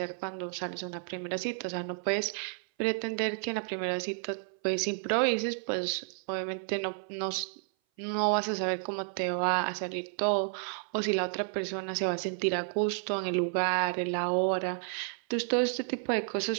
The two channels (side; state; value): left; silent; 57 dB below the other